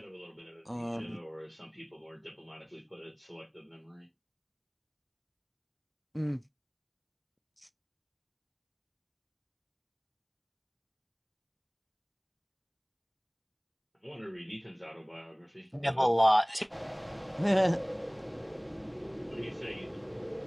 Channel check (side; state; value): both; identical; correlation 1.00